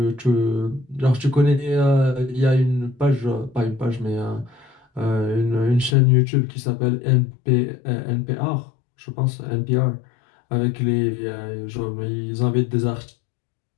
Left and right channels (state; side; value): drops out; right; at 6.0 s